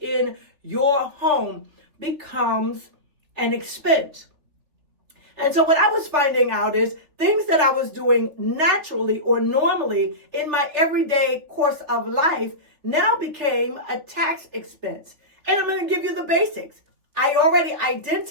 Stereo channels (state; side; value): late; left; 3.6 ms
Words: your home, becomes an expense. And so what I was finding out is things that I was doing naturally or normally in my everyday course of life now became a tax expense. And I'm going to give you the basics. I already